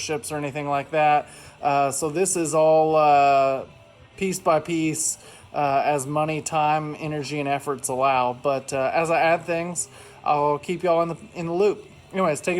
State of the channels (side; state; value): both; identical; correlation 1.00